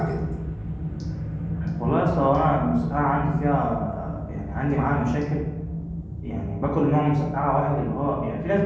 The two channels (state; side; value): identical; both; correlation 1.00